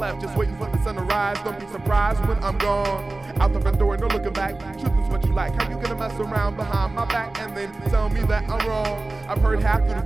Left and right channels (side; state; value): left; quieter; 3.1 dB